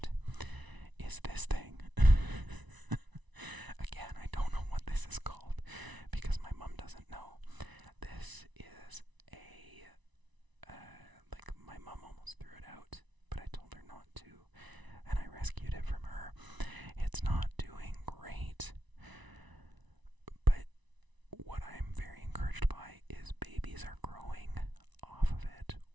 is this thing. Again, I don't know what this is called because my mom doesn't know. This is a, like, my mom almost threw it out, but I told her not to, and I rescued it from her. It's not doing great, but what I'm very encouraged by is babies are growing off of it.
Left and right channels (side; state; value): left; late; 1.0 ms